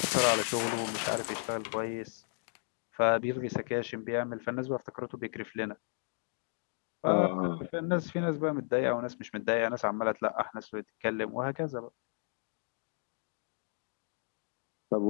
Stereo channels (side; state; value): right; silent; 55 dB below the other